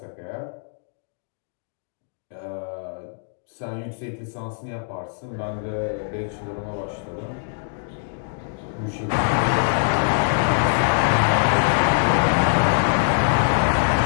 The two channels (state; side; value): silent; right; digital silence